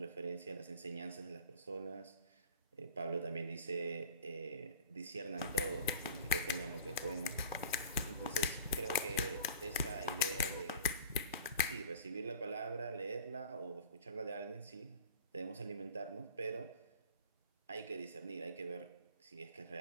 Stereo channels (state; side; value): inverted; both; correlation -0.40